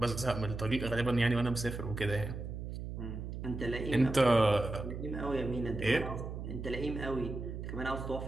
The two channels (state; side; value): noise; right; hum, 7 dB below the sound